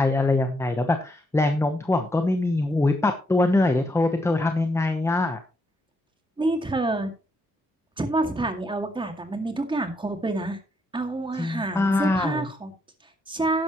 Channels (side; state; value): both; normal; correlation 0.78